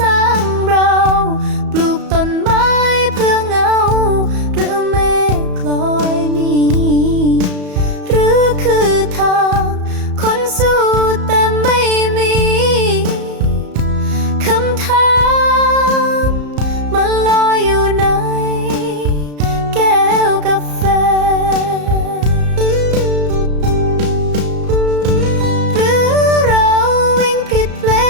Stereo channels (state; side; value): late; left; 34 ms